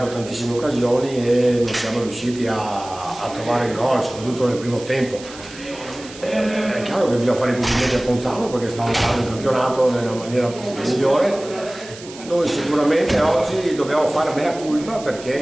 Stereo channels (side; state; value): right; noise; hiss, 17 dB below the sound